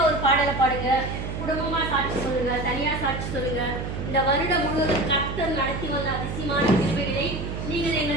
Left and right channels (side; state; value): right; noise; hum, 5 dB below the sound